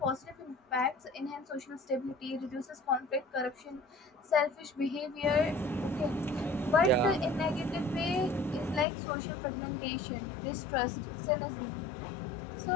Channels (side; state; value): right; drops out; at 8.8 s